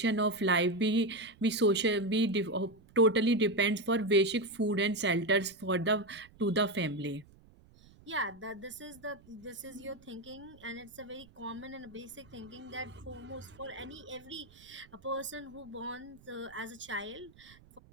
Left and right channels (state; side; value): noise; right; rumble, 25 dB below the sound